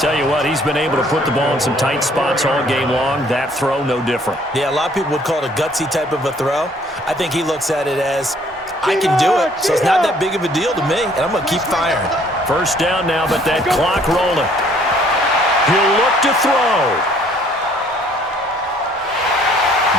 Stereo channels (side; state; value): both; normal; correlation 0.61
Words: you what, he's been able to put the ball in some tight spots all game long. That throw, no different. Yeah, a lot of people would call it a gutsy type of a throw. I think he looks at it as, I can do it, so it's not that big of a deal to me, and I'm going to keep firing. First down now, but that clock rolling. He'll look to throw.